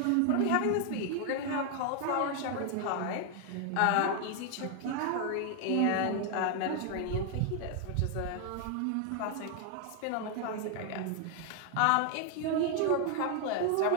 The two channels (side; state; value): both; different; correlation 0.00